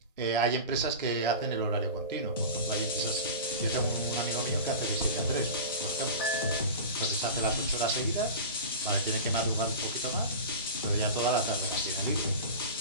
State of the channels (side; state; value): both; inverted; correlation -0.30